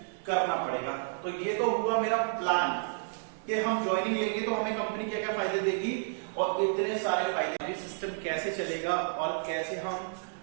करना पड़ेगा। तो ये तो हुआ मेरा प्लान कि हम ज्वाइनिंग लेंगे तो हमें कंपनी क्या क्या फायदे देगी, और इतने सारे फायदे, सिस्टम कैसे चलेगा और कैसे हम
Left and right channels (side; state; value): left; silent; digital silence